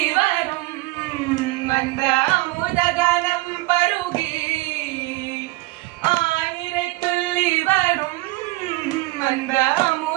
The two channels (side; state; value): left; quieter; 21.1 dB